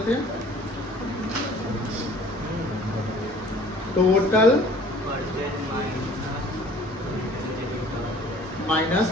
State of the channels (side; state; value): both; normal; correlation 0.52